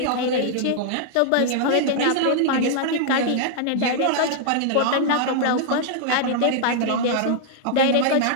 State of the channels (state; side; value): different; both; correlation -0.01